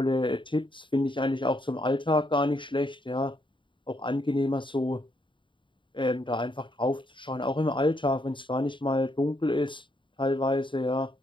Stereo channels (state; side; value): late; right; 0.24 ms